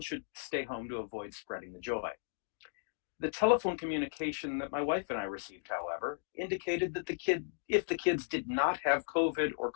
should stay home to avoid spreading the joy. The telephone communication that my wife and I received, however, indicated that if the kids did not have COVID or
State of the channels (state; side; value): silent; right; digital silence